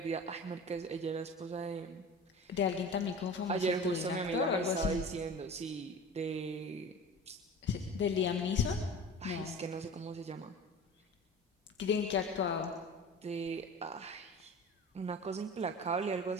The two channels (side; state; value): both; normal; correlation 0.37